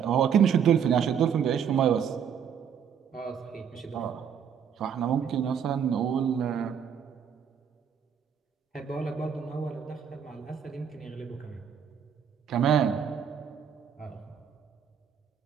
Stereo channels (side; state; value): left; quieter; 7.8 dB